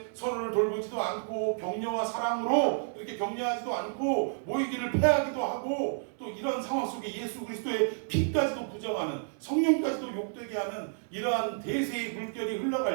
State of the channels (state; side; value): silent; left; digital silence